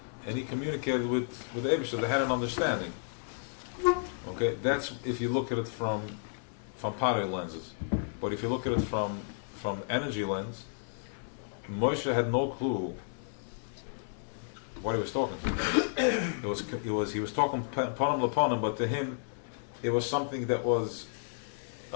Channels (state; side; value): silent; right; digital silence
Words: and he communicated with Eibishter. They had an understanding. Okay, that's if you look at it from Potter lenses. But if you look at it from energy lens, Moshe had no clue what he was talking to. He was talking panim lepanim, but to him, it was something that was.